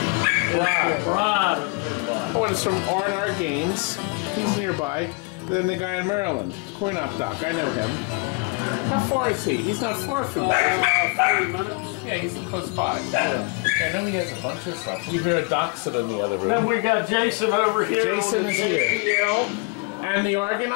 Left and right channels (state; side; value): quieter; right; 31.2 dB